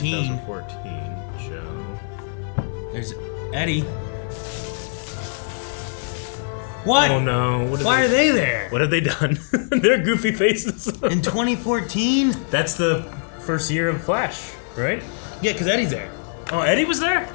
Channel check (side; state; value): right; silent; 57 dB below the other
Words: 2014 show. There's Eddie. What? Oh no. Why are they there? What have they done? They're goofy faces. In 2014? That's the first year of Flash, right? Yeah, because Eddie's there. Oh, Eddie was there?